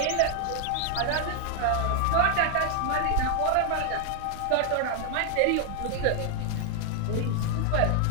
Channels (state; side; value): different; both; correlation 0.00